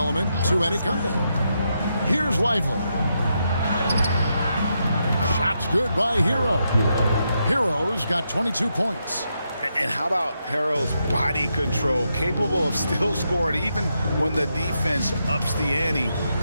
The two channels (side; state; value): both; inverted; correlation -0.82